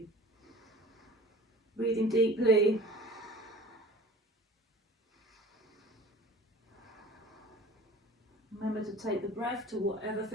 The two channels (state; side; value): normal; both; correlation 0.43